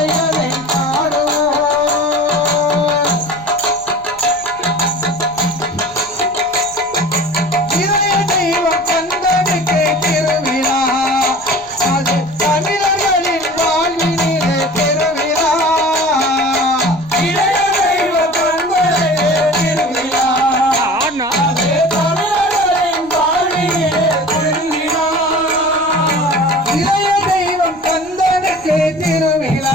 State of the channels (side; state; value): left; noise; rumble, 26 dB below the sound